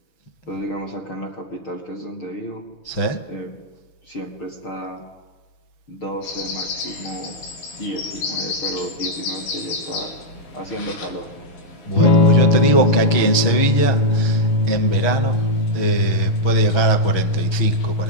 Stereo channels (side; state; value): right; late; 6.3 ms